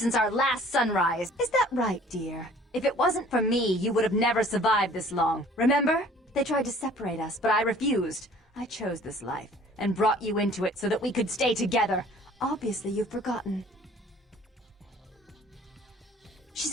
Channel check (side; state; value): both; normal; correlation 0.52